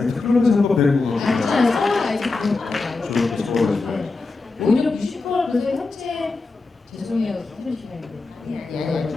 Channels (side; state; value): right; quieter; 3.8 dB